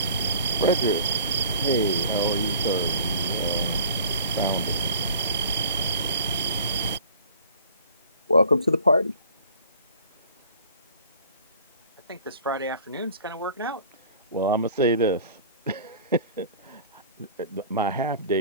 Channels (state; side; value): inverted; both; correlation -0.48